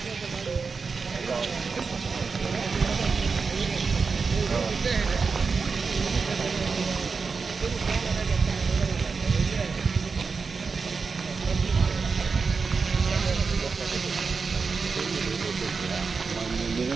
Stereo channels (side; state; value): left; quieter; 4.9 dB